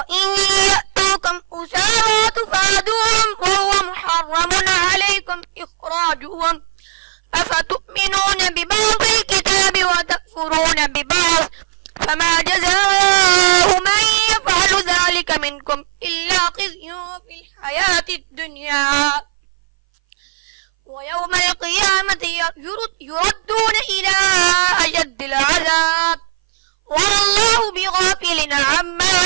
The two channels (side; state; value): left; silent; 61 dB below the other